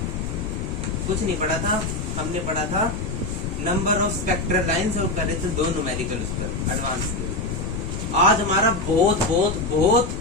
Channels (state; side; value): noise; left; rumble, 4 dB below the sound